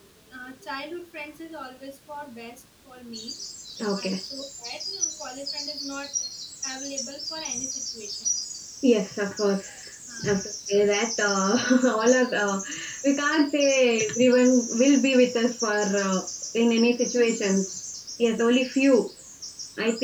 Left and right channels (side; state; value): both; identical; correlation 1.00